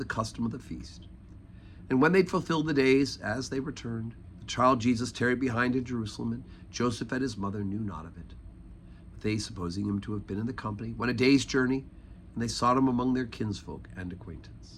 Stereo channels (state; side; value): identical; both; correlation 1.00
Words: custom of the feast. And when they'd fulfilled the days, as they returned, the child Jesus tarried behind in Jerusalem, and Joseph and his mother knew not of it. But they, supposing him to have been in the company, went a day's journey, and they sought him among their kinsfolk and